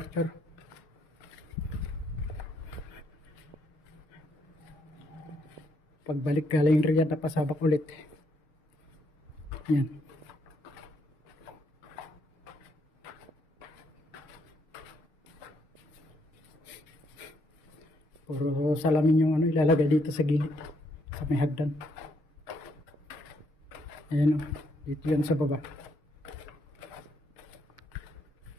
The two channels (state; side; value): late; right; 6.5 ms